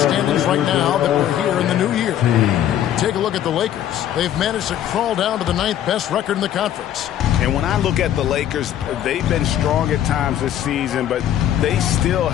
standings right now that we're here in the new year. Take a look at the Lakers. They've managed to crawl down to the 9th best record in the conference. And when I look at the Lakers, they've been strong at times this season, but they still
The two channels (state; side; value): quieter; right; 11.0 dB